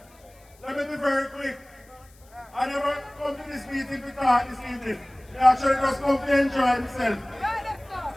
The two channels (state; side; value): noise; left; hiss, 29 dB below the sound